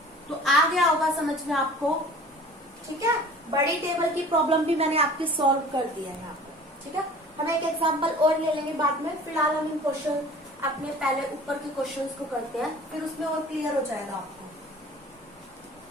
तो आ गया होगा समझ में आपको, ठीक है। बड़ी टेबल की प्रॉब्लम भी मैंने आपकी सॉल्व कर दिया है यहाँ पे, ठीक है। हम एक एग्जांपल और ले लेंगे बाद में, फिलहाल हम इन क्वेश्चन अपने पहले ऊपर के क्वेश्चंस को करते हैं, फिर उसमें और क्लियर हो जाएगा आपको।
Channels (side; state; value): both; normal; correlation 0.45